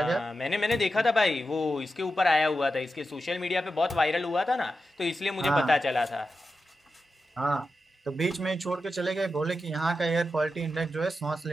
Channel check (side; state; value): both; normal; correlation 0.90